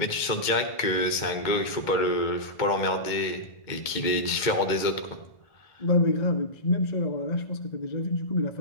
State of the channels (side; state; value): right; late; 2.1 ms